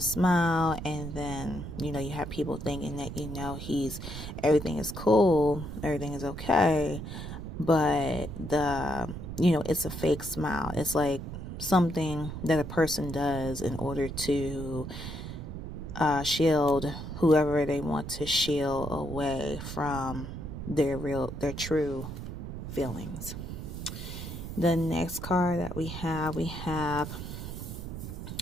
smile, and then, you know, you have people thinking that, you know, everything is cool, everything is okay, but you know, it's a fake smile. It's like something that a person does in order to shield whoever they want to shield away from their true feelings. The next card that we have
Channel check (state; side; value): noise; right; rumble, 8 dB below the sound